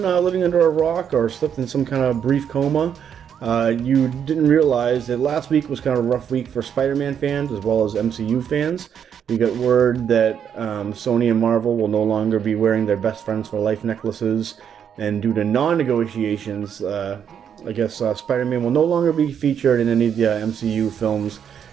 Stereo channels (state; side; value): quieter; left; 8.3 dB